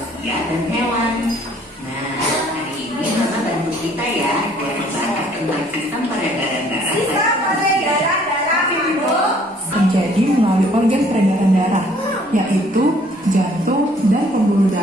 dan hewan. Nah, hari ini Mama bantu kita, ya, buat membahas tentang sistem peredaran darah. Sistem peredaran darah manusia terjadi melalui organ peredaran darah, yaitu jantung dan pembuluh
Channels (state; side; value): normal; both; correlation 0.60